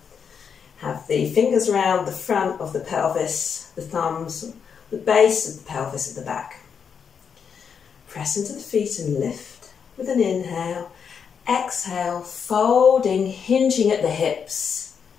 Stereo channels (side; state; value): right; quieter; 6.8 dB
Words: Have the fingers around the front of the pelvis, the thumbs, the base of the pelvis at the back. Press into the feet and lift with an inhale. Exhale, folding, hinging at the hips.